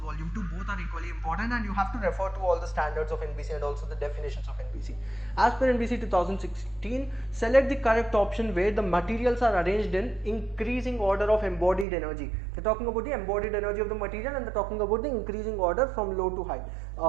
2. Both are equally important, and you have to refer to all the standards of NBC and also the definitions of NBC. As per NBC 2016, select the correct option where the materials are arranged in increasing order of embodied energy. They're talking about the embodied energy of the material, and they're talking about the increasing order from low to high.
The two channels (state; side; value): drops out; left; at 11.9 s